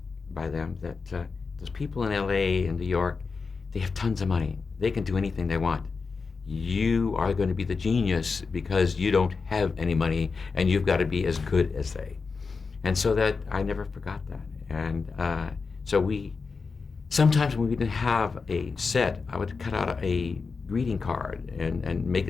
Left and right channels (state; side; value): quieter; right; 4.7 dB